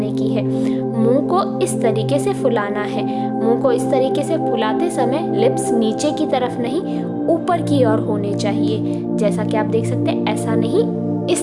की है। मुंह को इस तरीके से फुलाना है। मुंह को इस तरीके से फुलाते समय लिप्स नीचे की तरफ नहीं, ऊपर की ओर होने चाहिए। जैसा कि आप देख सकते हैं, ऐसा नहीं, इस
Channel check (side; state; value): both; identical; correlation 1.00